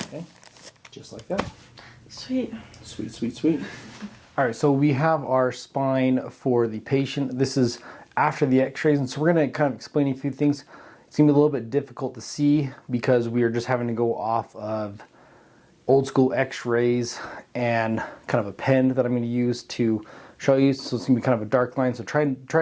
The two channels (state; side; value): identical; both; correlation 1.00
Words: Okay, just like that. Sweet. Sweet, sweet, sweet. All right, so we have our spine for the patient. This is after the x-rays, and so we're going to kind of explain a few things. It's going to be a little bit difficult to see because we are just having to go off of old school x-rays and kind of a pen that I'm going to use to show you. So it's going to be kind of a dark line, so try